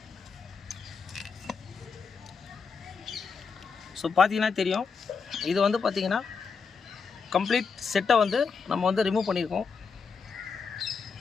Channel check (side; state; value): right; quieter; 5.4 dB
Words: ஸோ பார்த்தீங்கன்னா தெரியும், இது வந்து பார்த்திங்கன்னா கம்ப்ளீட் செட்டை வந்து நம்ம வந்து ரிமூவ் பண்ணியிருக்கோம்.